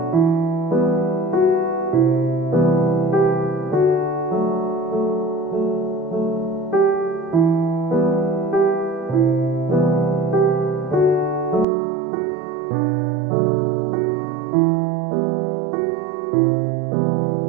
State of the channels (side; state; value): left; drops out; at 11.7 s